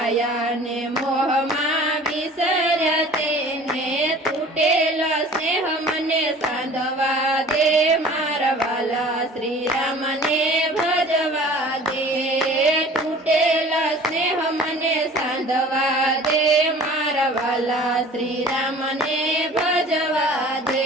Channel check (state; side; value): normal; both; correlation 0.45